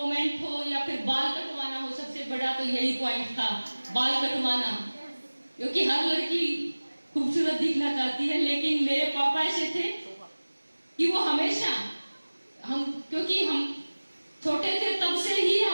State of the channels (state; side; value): inverted; both; correlation -1.00